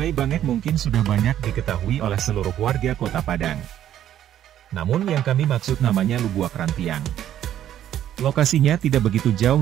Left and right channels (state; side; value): quieter; left; 11.2 dB